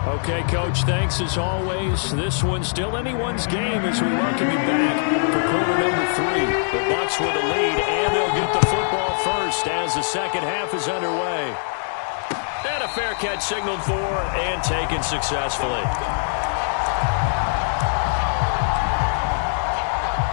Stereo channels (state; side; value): silent; right; digital silence